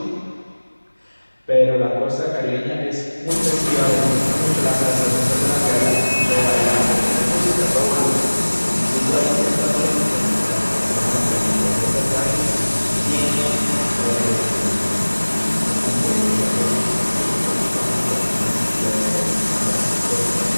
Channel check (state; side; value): inverted; both; correlation -1.00